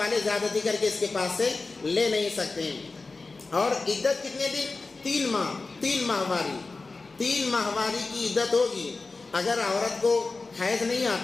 زیادتی کر کے اس کے پاس سے لے نہیں سکتے. اور عدت کتنے دن؟ 3 ماہ. 3 ماہواری 3 ماہواری کی عدت ہوگی. اگر عورت کو حیض نہیں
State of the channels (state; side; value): quieter; right; 3.8 dB